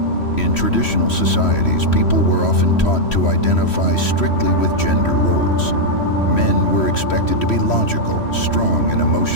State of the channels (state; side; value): late; right; 3.1 ms